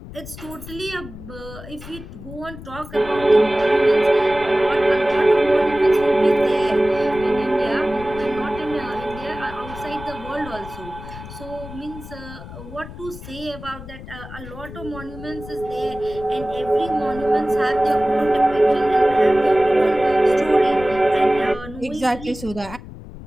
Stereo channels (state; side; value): noise; left; rumble, 14 dB below the sound